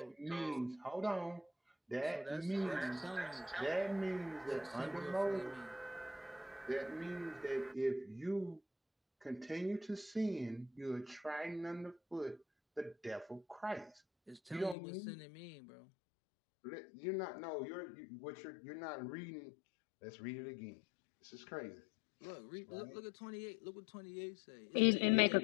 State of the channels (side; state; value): right; drops out; at 14.8 s